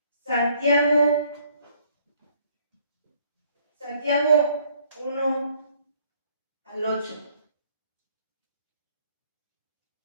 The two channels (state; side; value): inverted; both; correlation -0.63